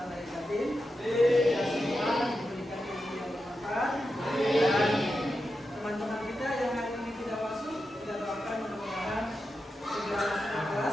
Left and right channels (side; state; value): both; normal; correlation 0.89